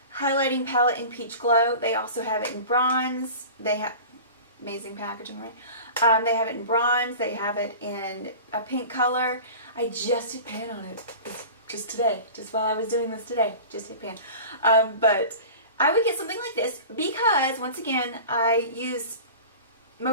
highlighting palette in Peach Glow. They also have it in bronze. They have amazing packaging, right? They have it in bronze. They have it in a pink color. I just did pan on it. It's just today, just while I was doing this today, just hit pan. But I would get something like this because, once again, I use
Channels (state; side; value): inverted; both; correlation -0.36